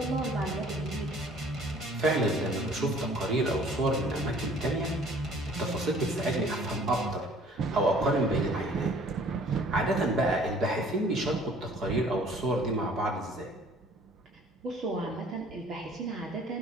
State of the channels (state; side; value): normal; both; correlation 0.54